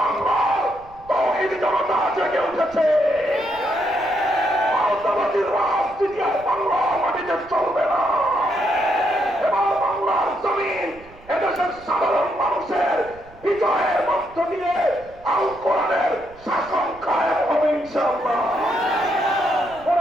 তৌহিদি জনতা জেগে উঠেছে। আওতাবাদীর রাজনীতি আর বাংলার মাটিতে চলবে না। এবার বাংলার জমিন এদেশের সাধারণ মানুষের বিজয়ের মধ্য দিয়ে আল কোরআনের শাসন কায়েম হবে ইনশাআল্লাহ।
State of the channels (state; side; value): noise; right; rumble, 24 dB below the sound